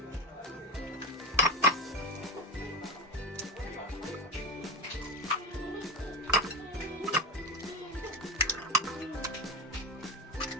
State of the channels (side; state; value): both; normal; correlation 0.19